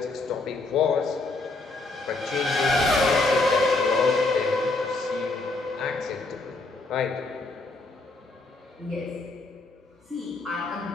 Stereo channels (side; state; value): right; quieter; 3.3 dB